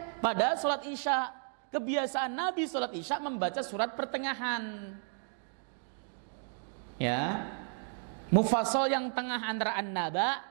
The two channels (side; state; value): left; silent; 56 dB below the other